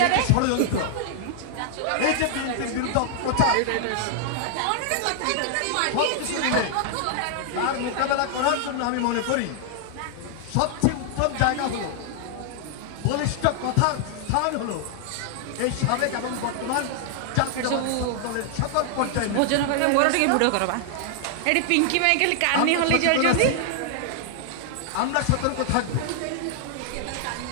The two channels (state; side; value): different; both; correlation 0.00